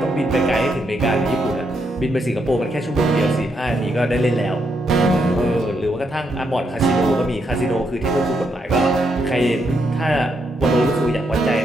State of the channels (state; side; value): normal; both; correlation 0.79